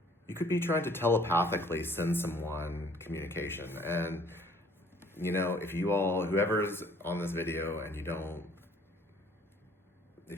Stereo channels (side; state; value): both; normal; correlation 0.57